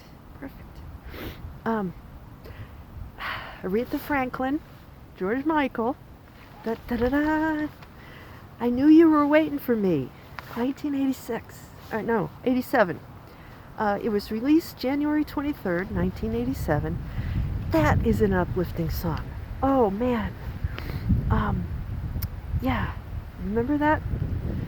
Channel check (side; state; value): both; identical; correlation 1.00